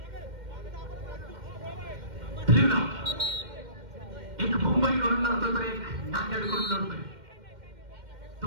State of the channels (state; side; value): late; left; 2.1 ms